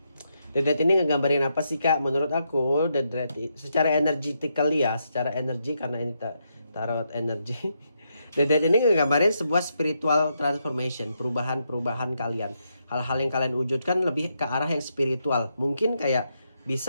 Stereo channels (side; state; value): both; inverted; correlation -0.80